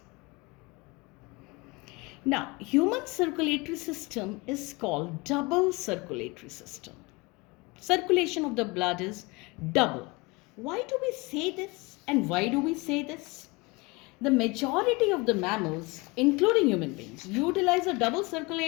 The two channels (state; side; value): quieter; right; 25.3 dB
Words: Now, human circulatory system is called double circulatory system. Circulation of the blood is double. Why do we say this, and why do we say this? The majority of the mammals, including human beings, utilize a double